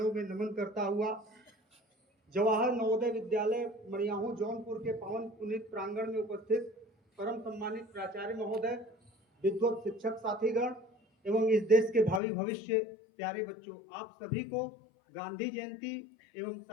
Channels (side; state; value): right; drops out; at 12.2 s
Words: में नमन करता हुआ जवाहर नवोदय विद्यालय मड़ियाहू जौनपुर के पावन पुनीत प्रांगण में उपस्थित परम सम्मानित प्राचार्य महोदय, विद्वत शिक्षक साथीगण एवं इस देश के भावी भविष्य प्यारे बच्चों, आप सभी को गांधी जयंती एवं